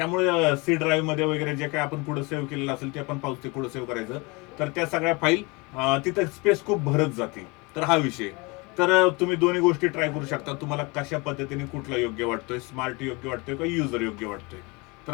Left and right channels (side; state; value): right; quieter; 27.1 dB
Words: सी ड्राईव्ह मध्ये वगैरे जे काय आपण पुढे सेव्ह केलेलं असेल ते आपण पाहू, ते पुढे सेव्ह करायचं. तर त्या सगळ्या फाईल तिथं स्पेस खूप भरत जाते. तर हा विषय. तर तुम्ही दोन्ही गोष्टी ट्राय करू शकता, तुम्हाला कशा पद्धतीने कुठला योग्य वाटतोय, स्मार्ट योग्य वाटतोय का युजर योग्य वाटतोय. तर